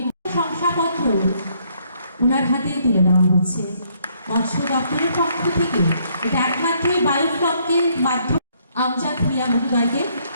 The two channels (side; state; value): both; inverted; correlation -0.68